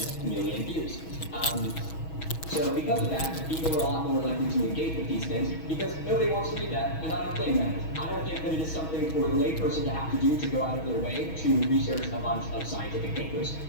million views. So because of that, people are a lot more likely to engage with these things because nobody wants to read that, and I don't blame them. I don't think that it is something for a layperson to have to do to go out of their way to research a bunch of scientific papers.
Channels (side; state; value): right; late; 6.2 ms